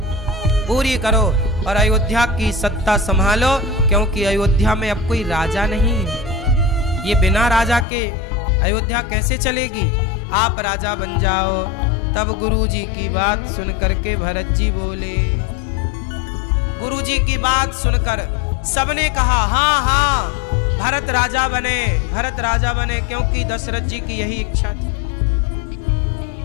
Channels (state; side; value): drops out; right; at 7.9 s